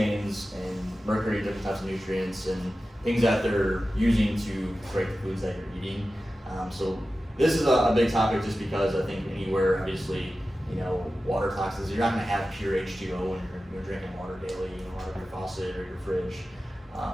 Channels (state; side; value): normal; both; correlation 0.94